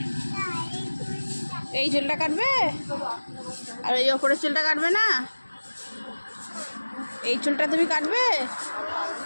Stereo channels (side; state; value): both; inverted; correlation -1.00